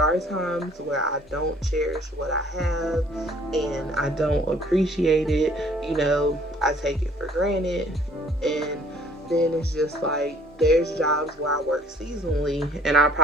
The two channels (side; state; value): both; normal; correlation 0.57